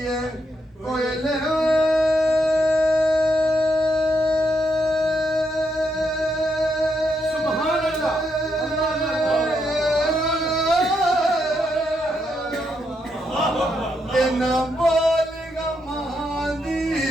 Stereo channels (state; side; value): normal; both; correlation 0.79